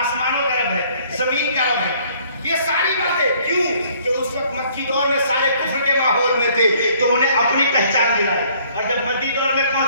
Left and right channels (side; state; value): both; inverted; correlation -0.60